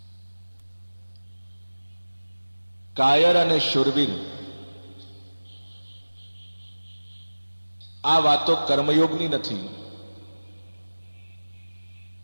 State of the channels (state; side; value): inverted; both; correlation -1.00